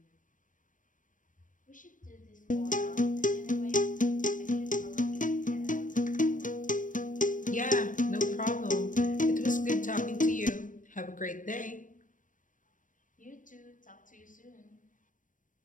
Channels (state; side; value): late; right; 0.38 ms